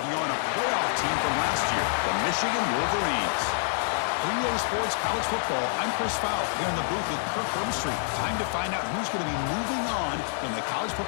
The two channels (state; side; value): silent; right; 59 dB below the other